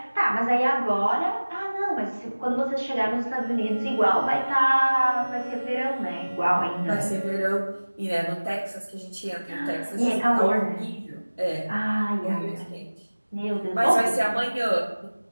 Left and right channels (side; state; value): both; inverted; correlation -1.00